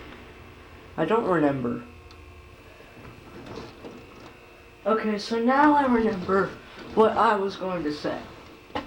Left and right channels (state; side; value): identical; both; correlation 1.00